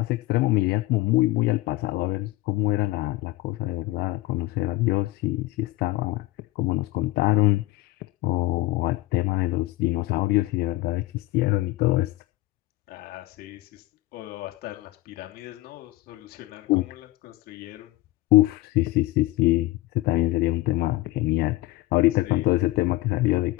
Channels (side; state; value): right; quieter; 19.0 dB